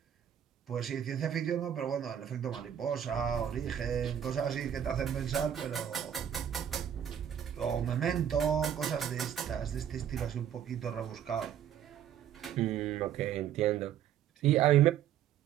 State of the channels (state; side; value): quieter; left; 9.6 dB